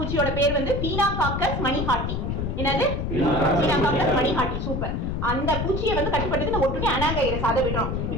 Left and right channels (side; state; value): left; noise; rumble, 2 dB below the sound